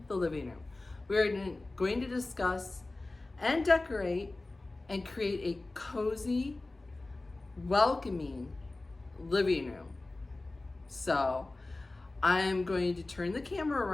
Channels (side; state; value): right; quieter; 3.1 dB